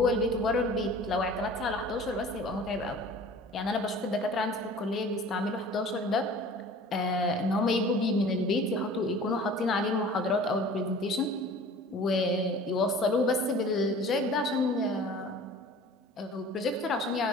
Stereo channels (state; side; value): normal; both; correlation 0.44